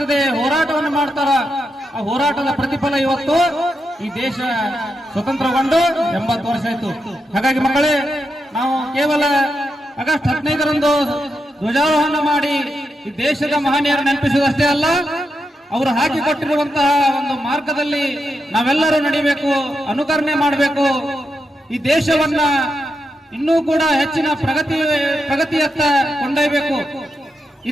ಹೋರಾಟವನ್ನು ಮಾಡ್ತಾರ. ಆ ಹೋರಾಟದ ಪ್ರತಿಫಲ ಇವತ್ತು ಈ ದೇಶ ಸ್ವತಂತ್ರಗೊಂಡು 80 ವರ್ಷ ಆಯಿತು. ಹಾಗಾಗಿ ಮಕ್ಕಳೇ, ನಾವು ಕೇವಲ ಆಗಸ್ಟ್ 15ರಂದು ಧ್ವಜಾರೋಹಣ ಮಾಡಿ ಈ ದೇಶದ ಮಹನೀಯರು ನೆನಪಿಸುವುದಷ್ಟೇ ಅಲ್ಲ, ಅವರು ಹಾಕಿಕೊಟ್ಟಿರುವಂತಹ ಒಂದು ಮಾರ್ಗದಲ್ಲಿ ನಾವೆಲ್ಲರೂ ನಡಿಬೇಕು, ಅನುಕರಣೆ ಮಾಡಬೇಕು. ಈ ದೇಶವನ್ನ ಇನ್ನೂ ಕೂಡ ಹೆಚ್ಚಿನ ಪ್ರಗತಿಯತ್ತ ಕೊಂಡೊಯ್ಯಬೇಕು.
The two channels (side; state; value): both; normal; correlation 0.85